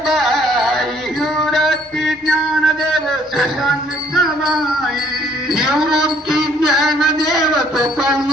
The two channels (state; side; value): normal; both; correlation 0.63